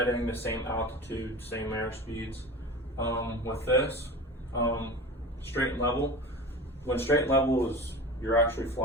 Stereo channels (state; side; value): normal; both; correlation 0.33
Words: the same altitude, same airspeeds. With this, straight and level, when straight and level is you're actually